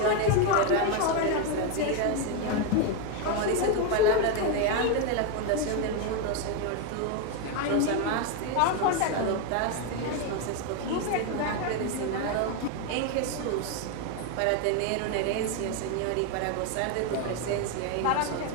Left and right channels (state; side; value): different; both; correlation 0.02